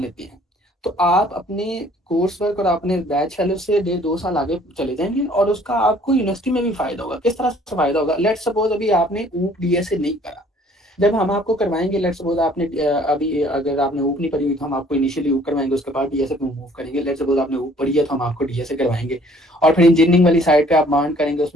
हैं, तो आप अपने कोर्स वर्क और अपने बैच फेलो से 1.5-2 साल आगे चले जाएंगे, और उसका आपको यूनिवर्सिटी में भी फायदा होगा। किस तरह से फायदा होगा? लेट सपोज अभी आपने ऊप डीएसए नहीं करा, जब हम आपको करवाएंगे, लेट सपोज आपने अभी अगर आपने ऊप नहीं पढ़ी हुई तो हम आपको इनिशियली ऊप करवाएंगे, उसके बाद डीएसए पे मूव करेंगे। लेट सपोज आपने ऊप पढ़ी है तो हम आपको डीएसए करवाएंगे, और फिर इंजीनियरिंग वाली साइड पे आप मांड करेंगे,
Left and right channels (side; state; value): both; normal; correlation 0.57